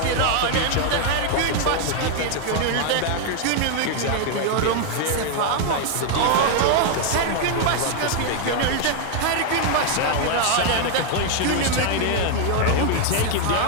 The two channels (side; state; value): both; different; correlation 0.00